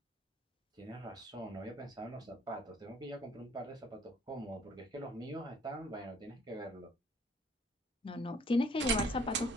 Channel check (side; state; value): both; normal; correlation 0.59